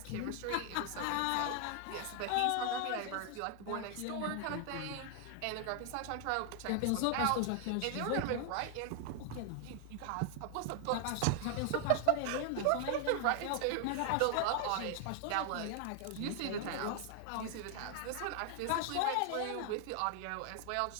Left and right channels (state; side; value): different; both; correlation 0.00